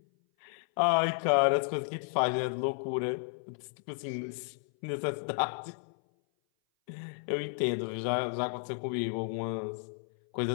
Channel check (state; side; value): silent; right; 56 dB below the other